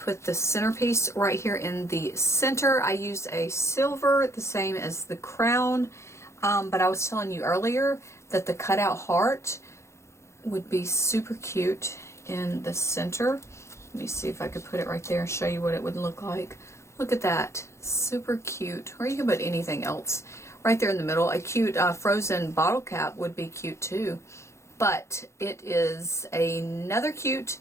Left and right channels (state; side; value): late; right; 0.14 ms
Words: the centerpiece right here in the center. I used a silver, the same as the crown. But I was telling you earlier that the cutout heart would be super cute in the center. Let me see if I could put it right there and show you what it would look like. Look at that. Super cute. Or you can put anything else right there in the middle. A cute frozen bottle cap would be cute too. But it is another cute